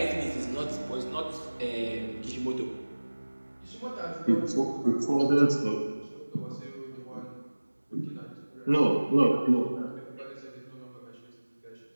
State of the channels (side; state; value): both; inverted; correlation -1.00